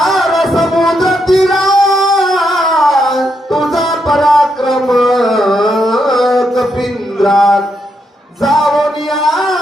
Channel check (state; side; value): normal; both; correlation 0.80